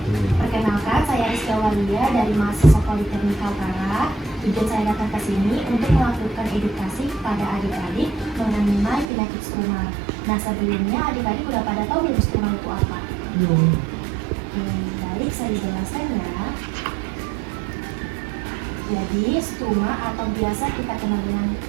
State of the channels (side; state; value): left; drops out; at 9.1 s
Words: Perkenalkan, saya Rizka Walia dari mahasiswa Politeknik Kaltara. Tujuan saya datang ke sini untuk melakukan edukasi kepada adik-adik mengenai penyakit struma. Nah, sebelumnya adik-adik udah pada tahu belum struma itu apa? Baik, saya jelaskan ya. Jadi, struma atau biasa kita kenal dengan